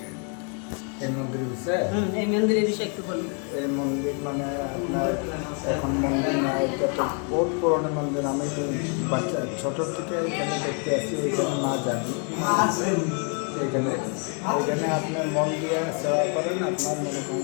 এই মন্দিরের বিষয়ে এই মন্দিরের বিষয়ে একটু বলুন। এই মন্দির মানে আপনার এখন মন্দির না, এটা তো বহুত পুরনো মন্দির। আমি বাচ্চা ছোটোর থেকে এখানে দেখতে আসি, এখানে মা জানি এখানে এখানে আপনার মন দিয়ে সেবা করেন, আপনার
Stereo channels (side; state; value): right; quieter; 38.7 dB